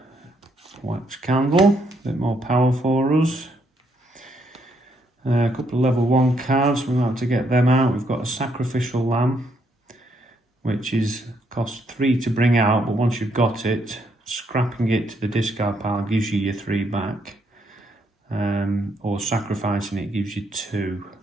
wax candle, a bit more power for us. A couple of level 1 cards, we're going to have to get them out. We've got a Sacrificial Lamb, which is cost 3 to bring out, but once you've got it, scrapping it to the discard pile gives you your 3 back, or sacrificing it gives you 2.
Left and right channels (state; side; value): normal; both; correlation 0.74